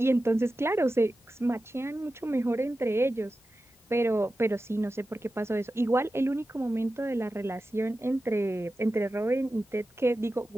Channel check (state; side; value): normal; both; correlation 0.93